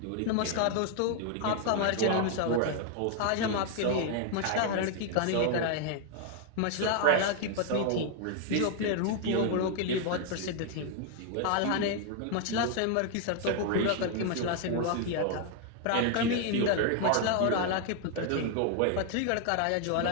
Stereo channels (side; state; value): both; different; correlation 0.00